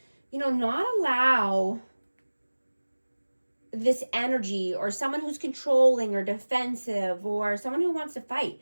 not allow this energy, or someone who's controlling or defensive or someone who wants to fight.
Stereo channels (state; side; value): inverted; both; correlation -1.00